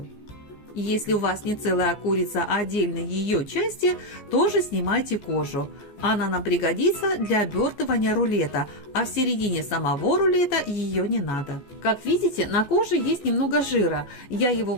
Если у вас не целая курица, а отдельные ее части, тоже снимайте кожу. Она нам пригодится для обертывания рулета, а в середине самого рулета ее не надо. Как видите, на коже есть немного жира, я его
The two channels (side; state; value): right; late; 14 ms